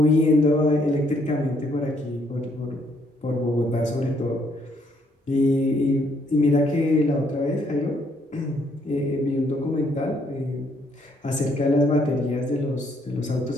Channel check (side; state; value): both; normal; correlation 0.69